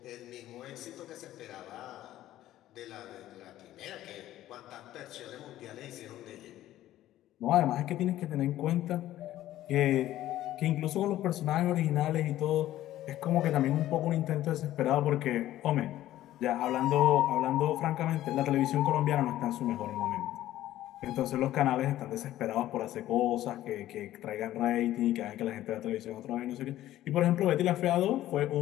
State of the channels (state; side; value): quieter; right; 13.9 dB